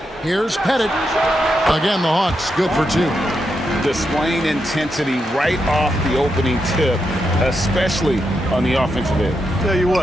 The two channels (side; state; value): both; normal; correlation 0.84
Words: Here's Pettit. Again, the Hawks good for 2. Displaying intensity right off the opening tip, especially on the offensive end. Tell you